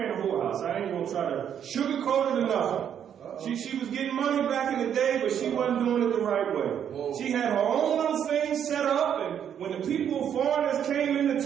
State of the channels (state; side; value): quieter; left; 8.9 dB